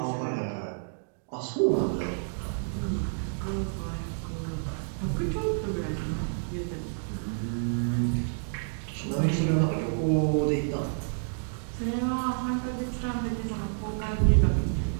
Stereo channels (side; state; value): left; silent; digital silence